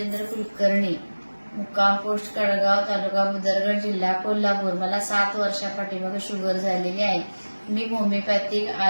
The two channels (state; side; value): inverted; both; correlation -1.00